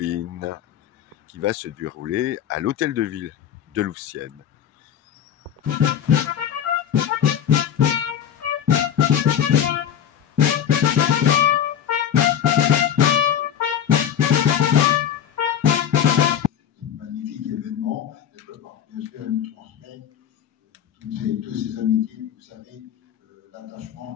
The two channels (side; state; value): right; quieter; 9.2 dB